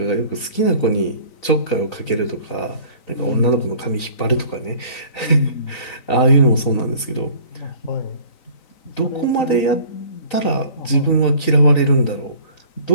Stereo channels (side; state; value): right; late; 3.9 ms